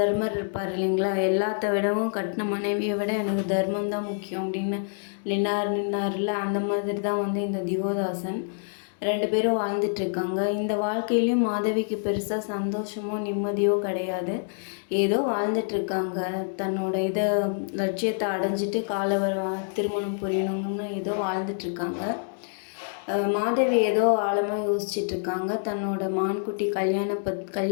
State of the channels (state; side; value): silent; right; digital silence